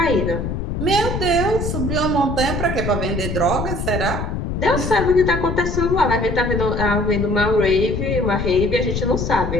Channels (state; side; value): noise; left; rumble, 3 dB below the sound